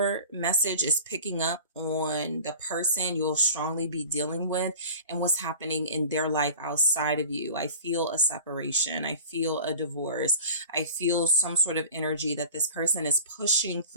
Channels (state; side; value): inverted; both; correlation -0.39